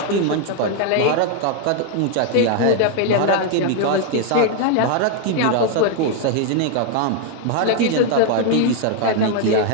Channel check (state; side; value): different; both; correlation 0.00